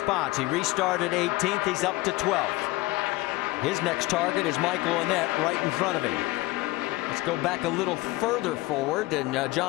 He restarted 18th. He's up to 12th. His next target is Michael Annett right in front of him. Let's go back a little further forward, and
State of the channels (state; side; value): quieter; right; 20.2 dB